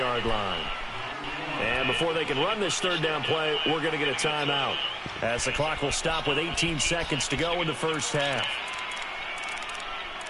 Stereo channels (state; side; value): identical; both; correlation 1.00